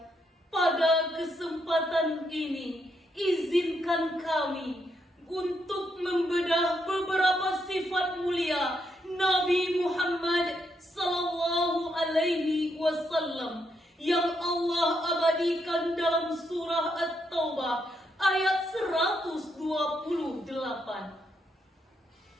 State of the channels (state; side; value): normal; both; correlation 0.78